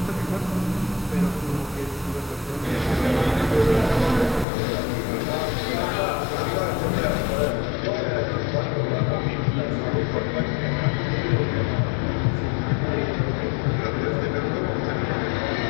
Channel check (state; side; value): drops out; right; at 4.5 s